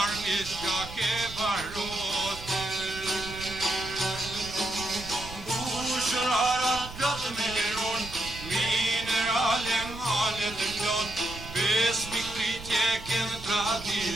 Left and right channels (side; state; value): right; noise; rumble, 13 dB below the sound